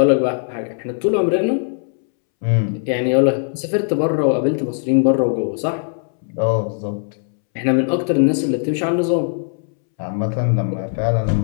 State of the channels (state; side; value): silent; right; 66 dB below the other